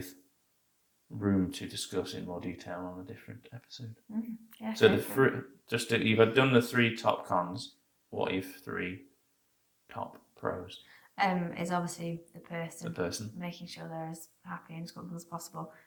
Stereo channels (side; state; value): both; identical; correlation 1.00